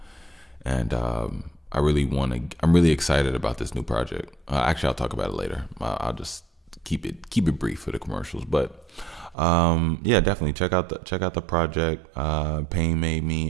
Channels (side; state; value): left; drops out; at 9.3 s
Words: And I'm really excited about this new project. Actually, I'll talk about it later. I'll just keep it brief for the commercials. But yeah, definitely check out the project. Pain Made